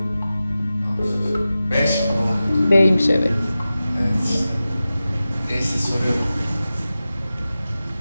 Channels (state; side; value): inverted; both; correlation -0.94